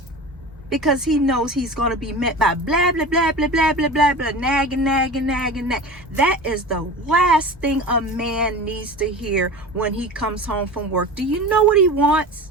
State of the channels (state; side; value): normal; both; correlation 0.33